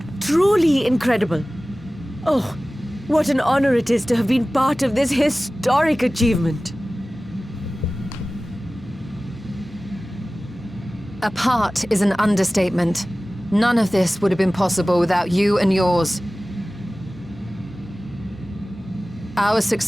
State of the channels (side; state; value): both; normal; correlation 0.97